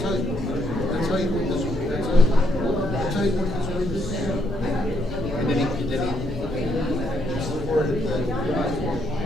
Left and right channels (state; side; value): normal; both; correlation 0.74